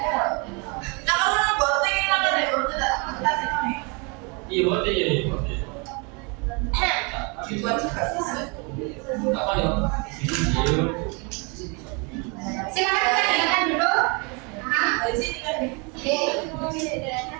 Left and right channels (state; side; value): quieter; left; 31.7 dB